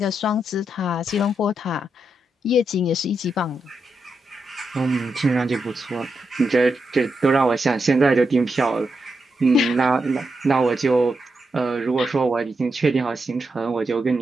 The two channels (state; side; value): normal; both; correlation 0.85